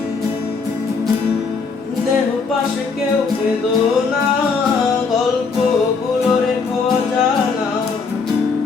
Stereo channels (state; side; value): quieter; right; 4.9 dB